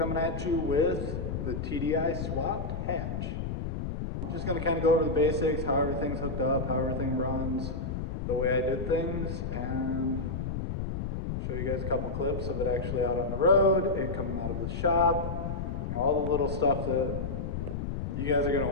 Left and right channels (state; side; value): noise; left; rumble, 3 dB below the sound